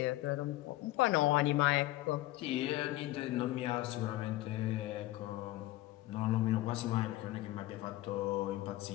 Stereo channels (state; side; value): quieter; right; 17.0 dB